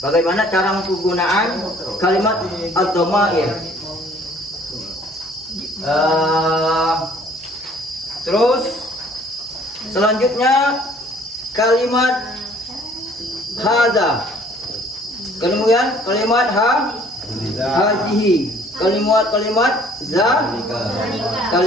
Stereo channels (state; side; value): normal; both; correlation 0.57